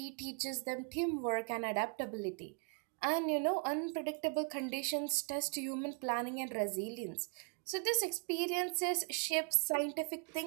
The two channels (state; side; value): quieter; left; 39.8 dB